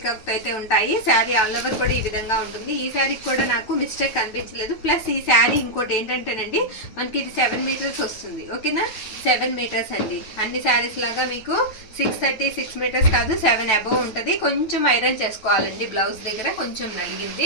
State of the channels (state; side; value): late; right; 9.2 ms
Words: అయితే ఉంటాయి. శారీ ఆల్ ఓవర్ కూడా ఈ విధంగా ఉంటుంది. ఈ శారీకి కూడా నాకు మిస్టేక్ కనిపించలేదు. ప్లస్ ఈ శారీ ఇంకోటి ఏంటంటేనండి, మనకి ఇది 7 మీటర్స్ వస్తుంది, ఓకేనా. 7 మీటర్స్ అండి. అన్ని శారీస్ లాగా మీకు 630 6 మీటర్స్ కాదు, 7 అబోవ్ ఉంటుంది. కొంచెం ఐరన్ చేసుకోవాలండి. బ్లౌజ్ దగ్గర కొంచెం